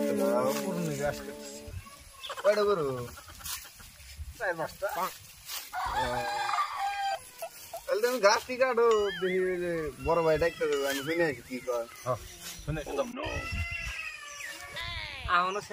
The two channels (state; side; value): identical; both; correlation 1.00